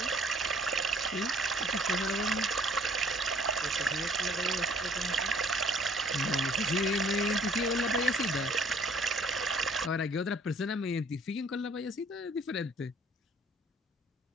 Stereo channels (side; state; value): both; normal; correlation 0.57